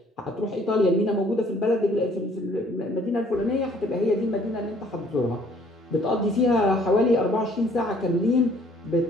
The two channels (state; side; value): normal; both; correlation 0.59